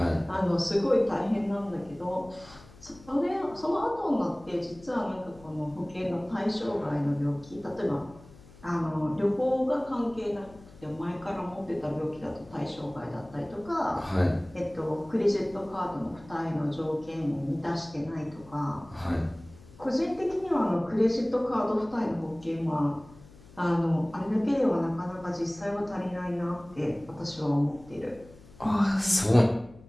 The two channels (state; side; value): noise; left; hum, 22 dB below the sound